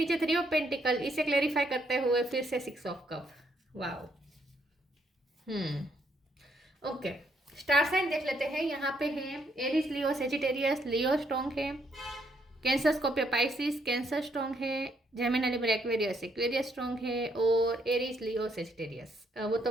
थ्री ऑफ पेंटिकल, इसे क्लेरिफाई करते हुए फिर से six of cup. Wow. Okay, star sign देख लेते हैं। यहाँ पे है Aries, Leo, Sagittarius. Leo strong है, Cancer, Scorpio, Pisces. Cancer strong है, Gemini, Libra, Aquarius. Aquarius strong है और एरीज, लियो, सेजिटेरियस। वो तो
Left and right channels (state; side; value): normal; both; correlation 0.73